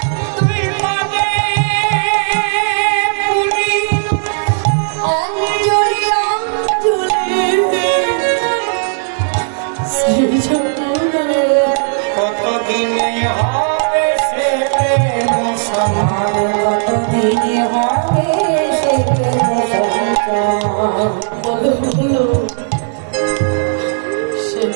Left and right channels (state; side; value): silent; left; digital silence